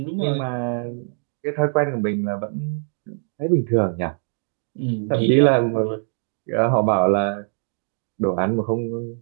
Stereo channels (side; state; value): left; silent; digital silence